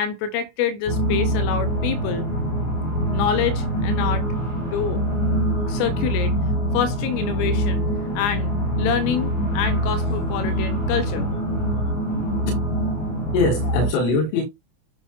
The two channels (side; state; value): right; late; 25 ms